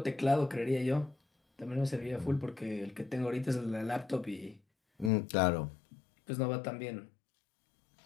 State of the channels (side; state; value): right; drops out; at 5.1 s